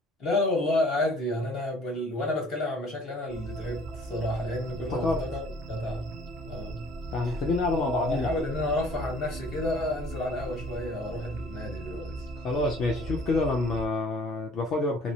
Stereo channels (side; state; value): both; normal; correlation 0.54